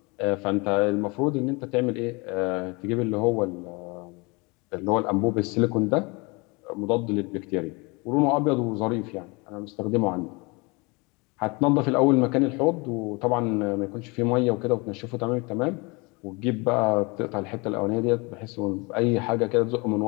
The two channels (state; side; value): quieter; right; 27.6 dB